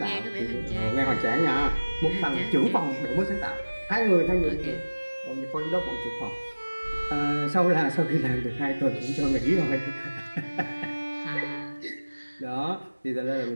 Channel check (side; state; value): both; inverted; correlation -1.00